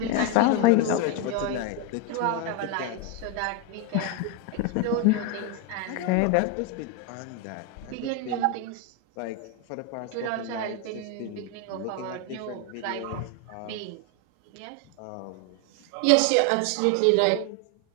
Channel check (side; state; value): both; different; correlation 0.02